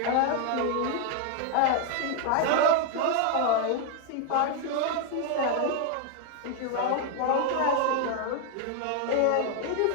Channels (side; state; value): both; different; correlation 0.00